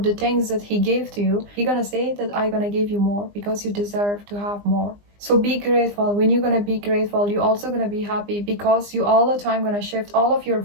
the things that He gave to you. He's gonna say that I'm gonna give you more because you deserve to have more. So be grateful. When you're gonna be grateful, you're also gonna be happy because you all the time gonna shift all of your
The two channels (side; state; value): left; late; 20 ms